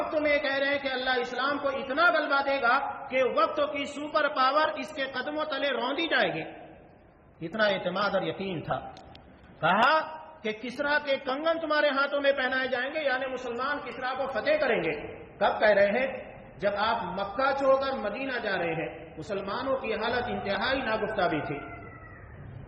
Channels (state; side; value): identical; both; correlation 1.00